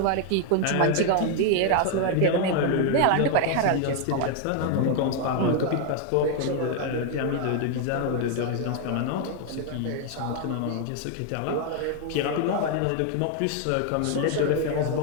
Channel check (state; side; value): different; both; correlation 0.01